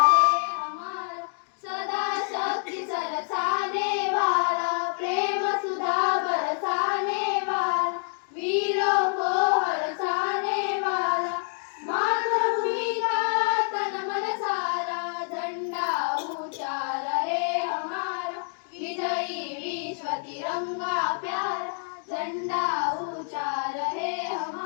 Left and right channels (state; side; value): silent; right; 58 dB below the other